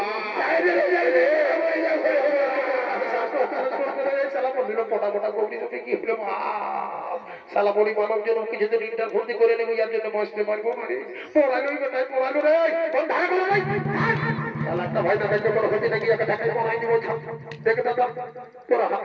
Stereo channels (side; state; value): both; identical; correlation 1.00